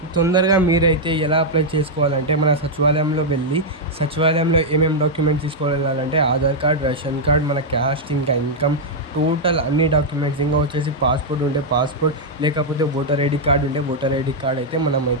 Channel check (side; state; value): both; normal; correlation -0.03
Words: తొందరగా మీరైతే ఎలా అప్లై చేసుకోవాలంటే మన సచివాలయంలో వెళ్ళి సచివాలయంలో ఏమేమి డాక్యుమెంట్స్ తీసుకెళ్ళాలంటే ఆధార్ కార్డ్, రేషన్ కార్డ్, మన క్యాస్ట్, ఇంకా ఇన్కమ్, టోటల్ అన్ని డాక్యుమెంట్స్, ఇంకా వచ్చేసి పాస్పోర్ట్ ఉంటే పాస్పోర్ట్, లేకపోతే ఓటర్ ఐడి కార్డ్ ఉంటే ఓటర్ ఐడి కార్డ్ అయితే